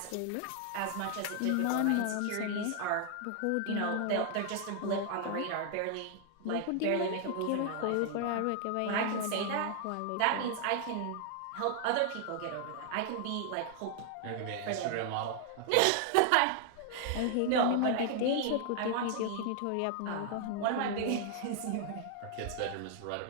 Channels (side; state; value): both; different; correlation 0.00